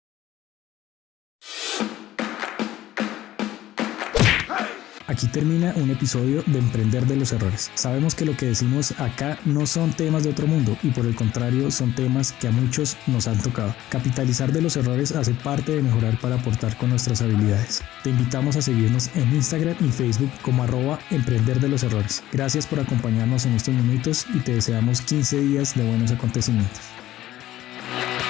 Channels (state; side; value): quieter; right; 14.4 dB